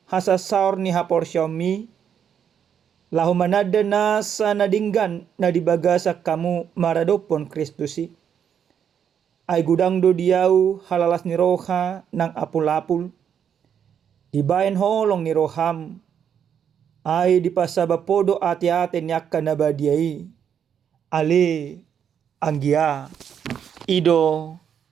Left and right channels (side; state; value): left; quieter; 8.3 dB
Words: hasasaur ni haporsyami lahu manada na sa nadinggan na dibagasa kamu maradopon Kristusi. Ay gudang do diau halalas ni roha nang apul-apul. Dibayan holong ni roham ay dipasabapodo ati-ate niaka nabadiai ale anggia ido